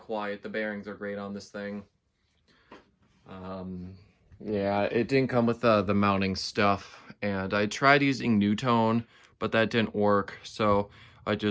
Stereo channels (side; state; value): both; identical; correlation 1.00